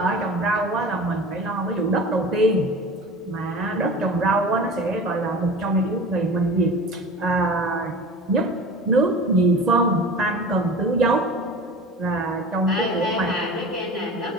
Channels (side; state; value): both; normal; correlation 0.37